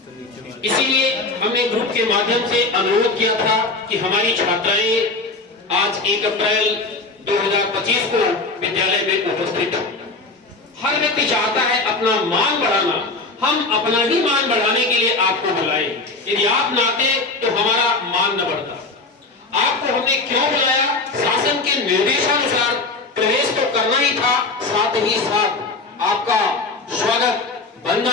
इसीलिए हमने ग्रुप के माध्यम से अनुरोध किया था कि हमारी छात्राएं आज 1 अप्रैल 2025 को विद्यालय में उपस्थित हो। हर व्यक्ति चाहता है अपना मान बढ़ाना, हम अपना ही मान बढ़ाने के लिए आपको बुलाएं। यदि आप ना आते तो हमारा मान न बढ़ता। आपको हमने क्यों बुलाया? शासन के निर्देशानुसार प्रवेश तो करना ही था, साथ ही साथ आपका स्वागत,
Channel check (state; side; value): quieter; right; 3.5 dB